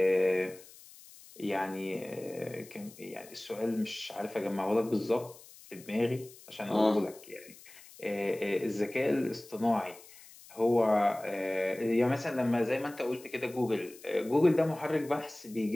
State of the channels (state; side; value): noise; left; hiss, 21 dB below the sound